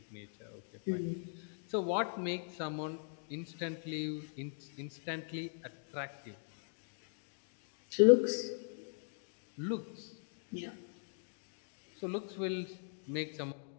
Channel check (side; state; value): right; silent; digital silence